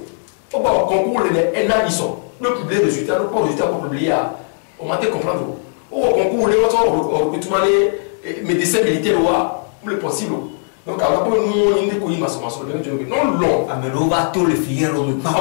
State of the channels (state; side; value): silent; right; 60 dB below the other